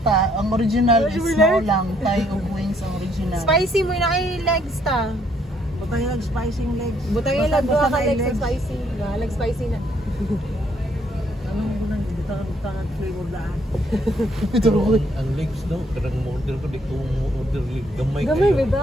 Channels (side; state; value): both; normal; correlation 0.68